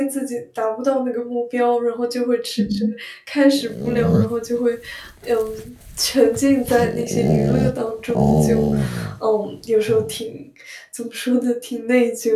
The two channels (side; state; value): both; identical; correlation 1.00